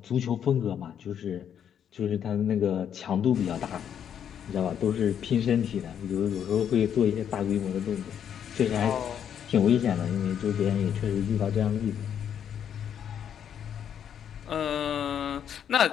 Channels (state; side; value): quieter; right; 8.8 dB